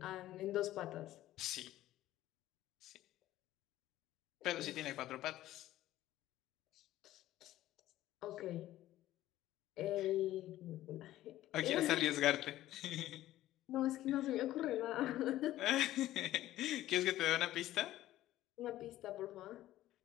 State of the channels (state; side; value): quieter; right; 14.5 dB